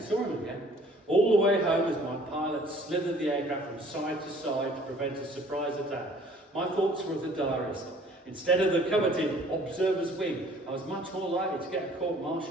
him again. All the way home, as my pilot slithered the aircraft from side to side to prevent a surprise attack, my thoughts were of the diarist. Instead of the coveted observer's wing, I was much more likely to get a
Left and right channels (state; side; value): normal; both; correlation 0.55